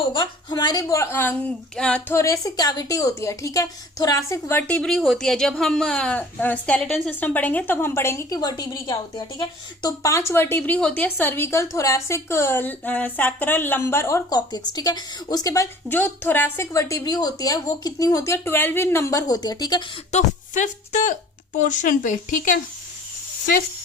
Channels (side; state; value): both; normal; correlation 0.48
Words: हमारे थोरेसिक कैविटी होती है, ठीक है। थोरासिक वर्टिब्री होती है। जब हम स्केलेटन सिस्टम पढ़ेंगे तब हम पढ़ेंगे कि वर्टिब्री क्या होती है, ठीक है। तो 5 वर्टिब्री होती है, सर्विकल, थोरासिक, सैक्रल, लंबर और कॉक्सिक्स, ठीक है। उसके बाद जो थोरासिक वर्टिब्री होती है वो कितनी होती है? 12 इन नंबर होती है, ठीक है। तो फिफ्थ पोर्शन पे, ठीक है,